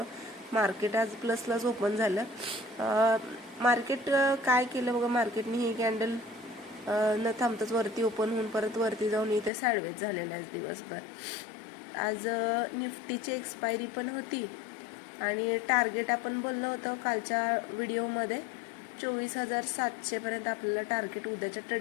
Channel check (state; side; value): drops out; right; at 9.5 s